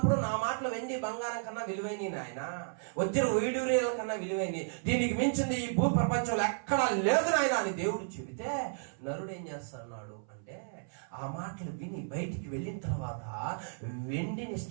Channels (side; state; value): left; silent; 56 dB below the other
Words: నా మాటలు వెండి బంగారం కన్నా విలువైన నాయన, వజ్ర వైడూర్యాల కన్నా విలువైనవి, దీనికి మించింది ఈ భూ ప్రపంచంలో ఎక్కడా లేదు నాయన అని దేవుడు చెబితే, నరుడు ఏం చేస్తున్నాడు అంటే, ఆ మాటలు విని బయటికి వెళ్ళిన తర్వాత వెండిని